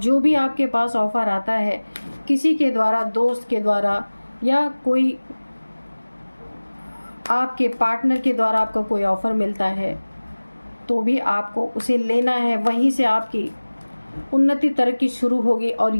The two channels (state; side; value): inverted; both; correlation -1.00